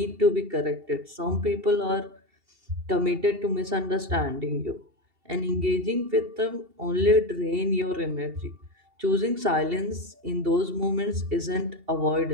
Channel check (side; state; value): left; late; 2.7 ms